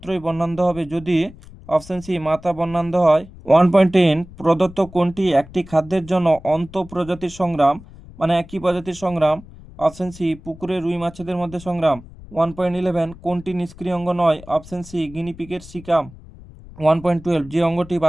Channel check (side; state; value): left; noise; rumble, 19 dB below the sound